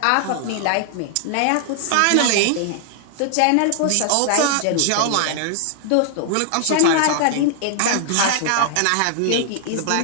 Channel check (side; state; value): both; different; correlation 0.00